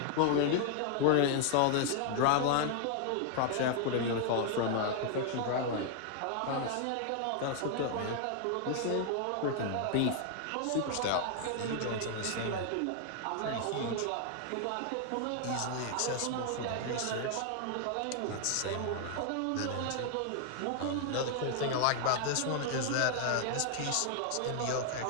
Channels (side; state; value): both; different; correlation 0.00